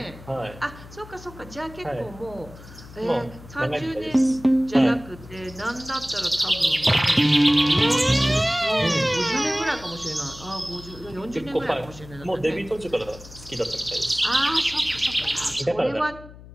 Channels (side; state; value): left; noise; hum, 18 dB below the sound